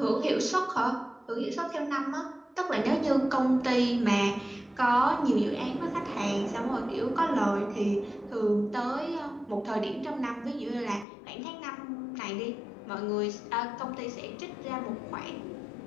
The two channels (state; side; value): drops out; right; at 11.1 s